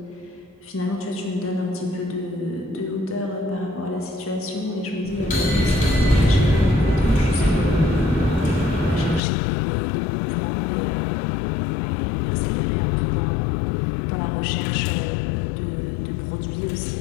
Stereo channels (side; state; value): right; drops out; at 9.2 s